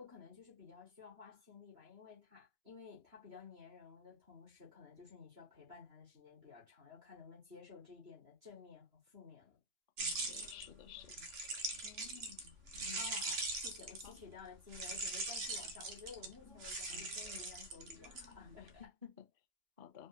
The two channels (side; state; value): left; late; 2.9 ms